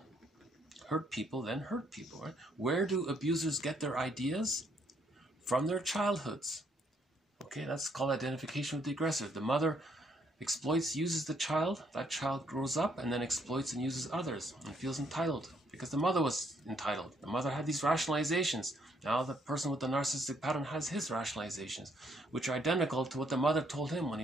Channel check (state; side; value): normal; both; correlation 0.70